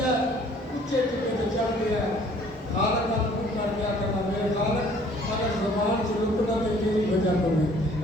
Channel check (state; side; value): normal; both; correlation 0.56